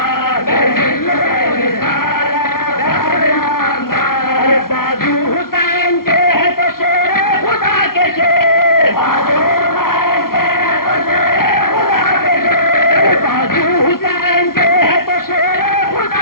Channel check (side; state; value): right; late; 0.93 ms